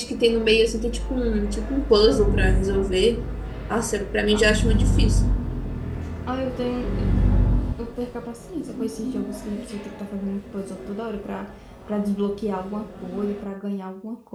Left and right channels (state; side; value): identical; both; correlation 1.00